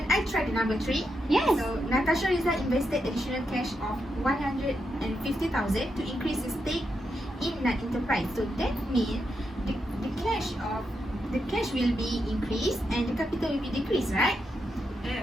I try the number 3? Yes. So, Natasha Rizal invested additional cash of 150,000 to increase his stake in NAT Enterprise. So that means the cash will be increased and the capital will be decreased, right?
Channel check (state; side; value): normal; both; correlation 0.84